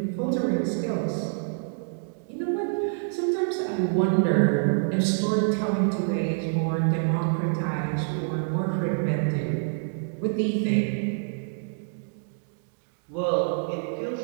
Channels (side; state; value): left; silent; digital silence